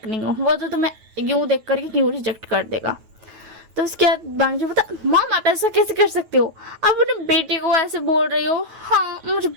नहीं हो, वो तो तुम्हें यूं देख करके क्यों रिजेक्ट कर देगा। तो उसके बाद बांगजी बता, मॉम आप ऐसा कैसे कर सकते हो, आप अपने बेटे को ऐसे बोल रही हो, हाँ मुझे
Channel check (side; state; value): left; late; 9.2 ms